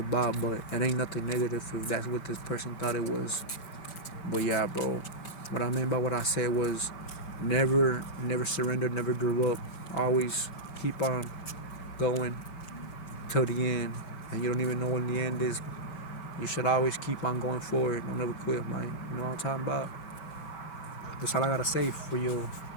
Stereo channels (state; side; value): late; right; 5.2 ms